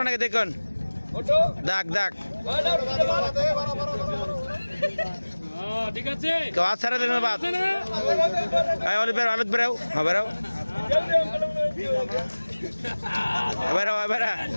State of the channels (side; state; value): both; inverted; correlation -1.00